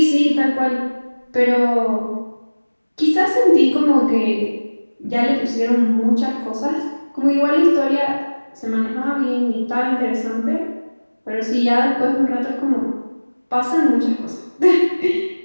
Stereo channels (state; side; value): inverted; both; correlation -1.00